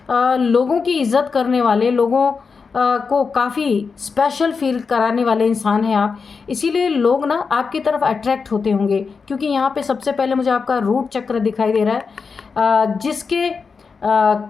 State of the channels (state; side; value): quieter; right; 5.1 dB